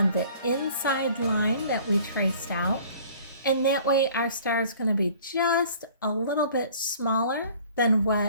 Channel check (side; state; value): both; inverted; correlation -0.51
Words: the inside line that we traced out. And that way our star is going to be just a little bit smaller than